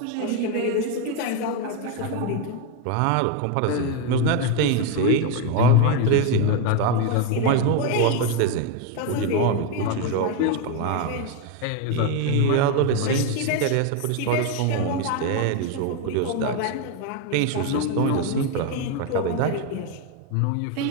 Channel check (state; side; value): different; both; correlation 0.02